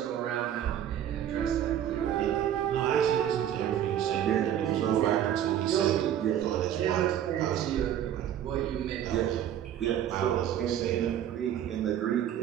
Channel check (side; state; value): left; quieter; 10.6 dB